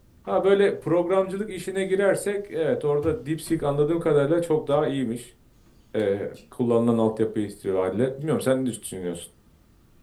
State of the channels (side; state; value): both; identical; correlation 1.00